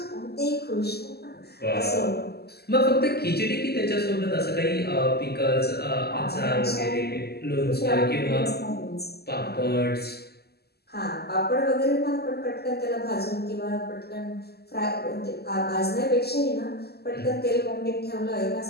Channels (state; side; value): late; right; 0.46 ms